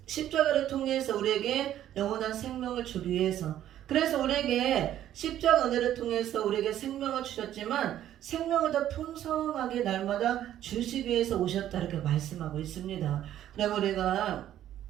십자가를 통해서 우리에게 영원한 생명을 주기 위해서, 그래서 우리에게 십자가 은혜를 통해서 우리에게 생명을 주셨지만 생명을 더 풍성하게 날마다 주시기 위해서 오셨다 이렇게 말씀하고 있습니다. 그럼 우리가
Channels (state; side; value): quieter; left; 11.8 dB